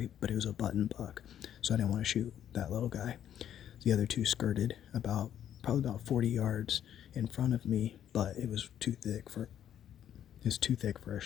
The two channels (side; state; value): right; quieter; 10.3 dB